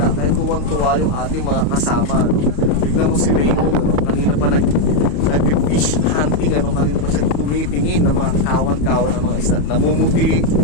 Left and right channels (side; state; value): right; late; 34 ms